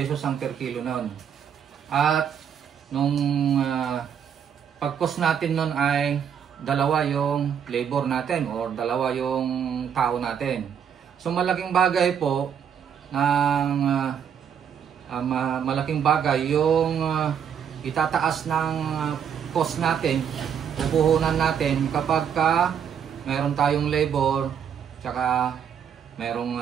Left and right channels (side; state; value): left; quieter; 8.1 dB